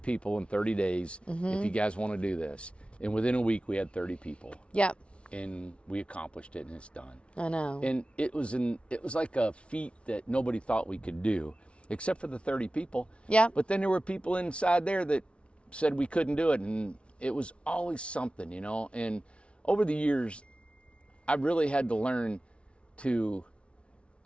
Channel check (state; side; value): late; right; 0.060 ms